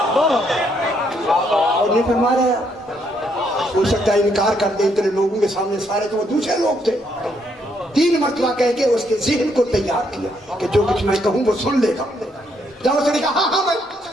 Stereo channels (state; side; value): normal; both; correlation 0.73